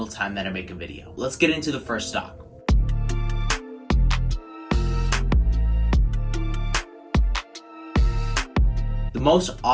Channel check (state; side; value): identical; both; correlation 1.00